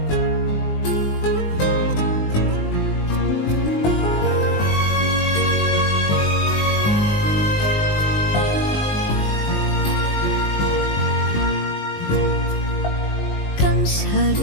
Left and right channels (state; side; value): late; right; 20 ms